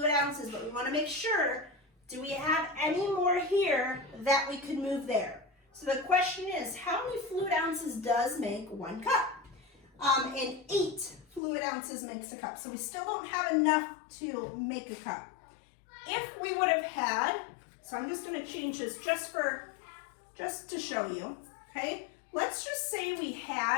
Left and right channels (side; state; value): right; drops out; at 11.4 s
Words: ounces, but we want to make sure, do we have any more here that we could move there? So the question is, how many fluid ounces does make 1 cup? And 8 fluid ounces makes a cup. So we still don't have enough to make a cup. If we would have had, so I'm just going to change this just to show you, okay? Let's just say we